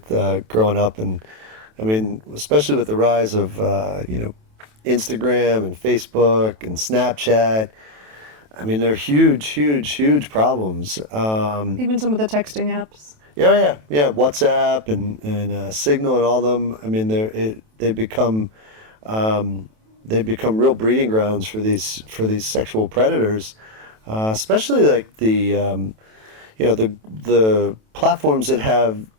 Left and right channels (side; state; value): left; late; 27 ms